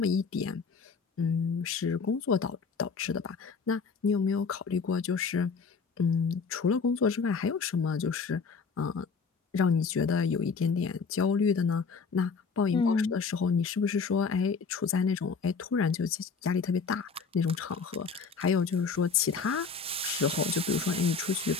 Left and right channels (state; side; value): quieter; right; 5.2 dB